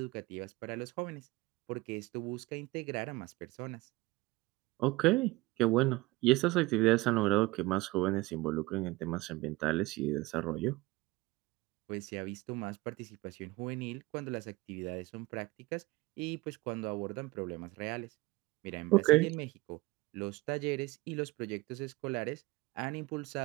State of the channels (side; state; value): left; quieter; 20.3 dB